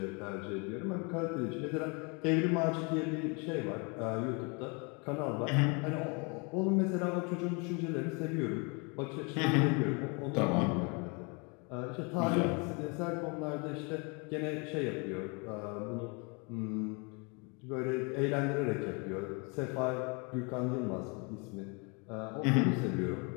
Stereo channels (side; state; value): right; quieter; 31.9 dB